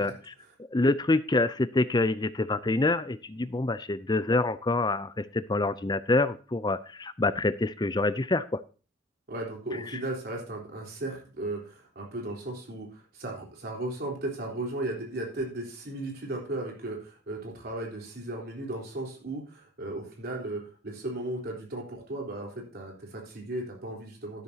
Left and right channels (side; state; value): both; normal; correlation 0.49